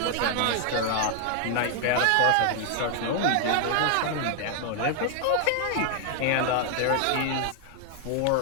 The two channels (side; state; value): both; different; correlation 0.00